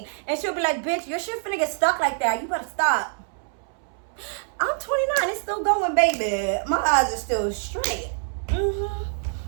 and she'll be like, bitch, your shit finna get stuck like that. You better stop. I'm 29. It's still going, baby. My eyes are still straight.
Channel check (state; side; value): silent; left; 62 dB below the other